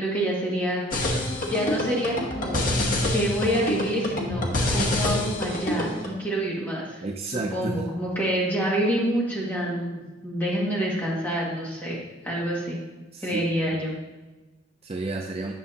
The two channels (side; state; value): both; normal; correlation 0.55